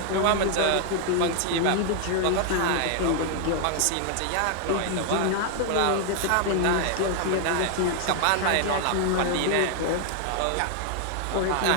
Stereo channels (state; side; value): different; both; correlation 0.00